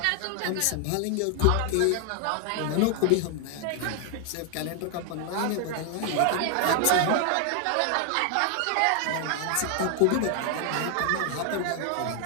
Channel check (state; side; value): different; both; correlation 0.00